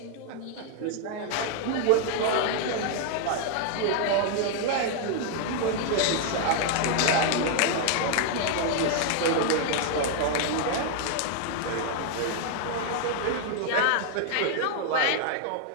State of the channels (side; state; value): both; different; correlation 0.00